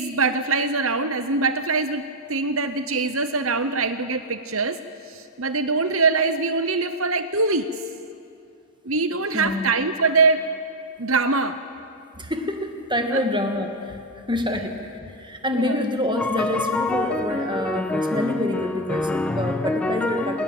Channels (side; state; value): both; normal; correlation 0.04